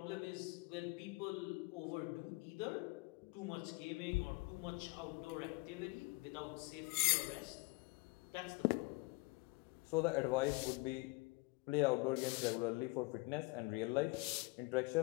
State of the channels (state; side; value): quieter; right; 24.7 dB